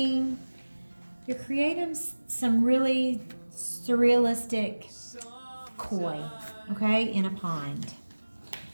some really surrealistic koi, okay, in a pond.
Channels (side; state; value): both; inverted; correlation -1.00